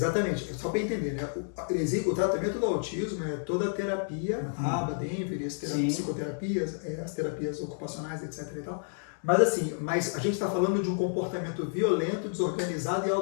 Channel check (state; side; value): silent; right; digital silence